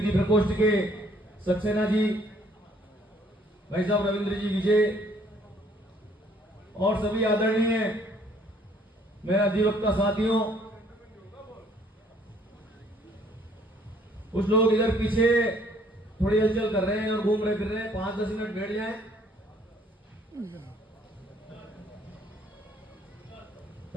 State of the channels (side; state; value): both; normal; correlation 0.62